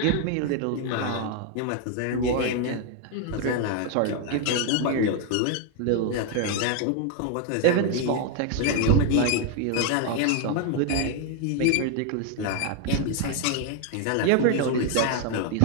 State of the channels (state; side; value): different; both; correlation 0.01